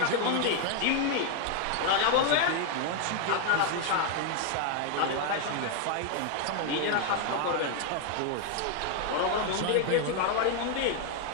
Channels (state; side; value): different; both; correlation 0.00